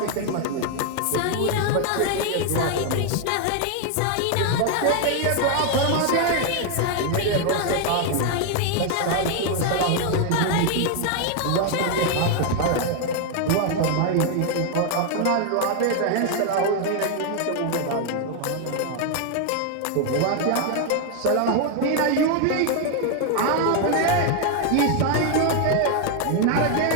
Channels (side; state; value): both; different; correlation 0.01